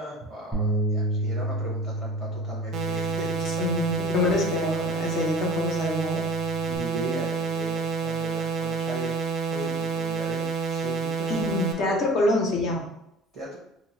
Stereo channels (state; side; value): normal; both; correlation 0.41